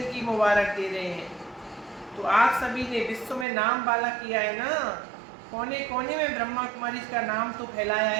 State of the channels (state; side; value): drops out; left; at 3.5 s